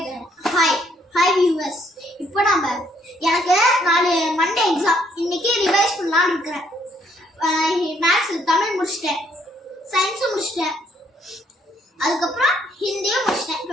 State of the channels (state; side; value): normal; both; correlation 0.69